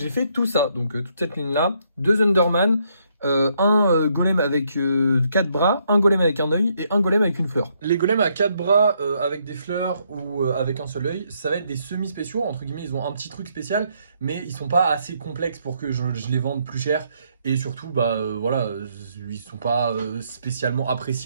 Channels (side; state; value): both; inverted; correlation -0.73